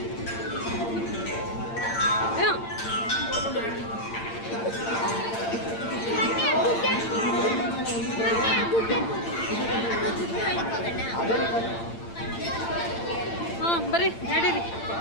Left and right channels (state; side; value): late; right; 8.8 ms